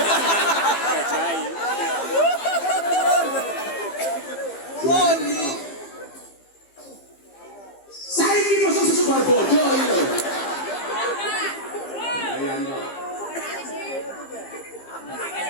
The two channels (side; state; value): right; late; 15 ms